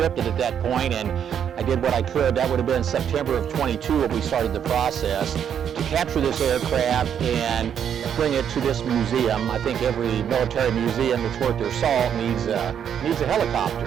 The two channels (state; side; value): quieter; left; 8.6 dB